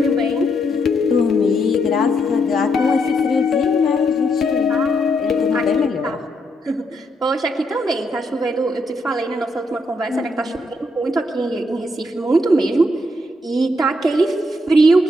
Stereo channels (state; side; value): normal; both; correlation 0.77